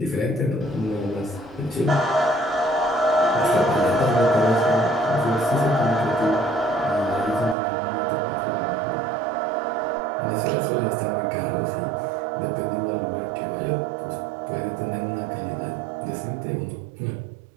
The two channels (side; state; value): left; drops out; at 7.6 s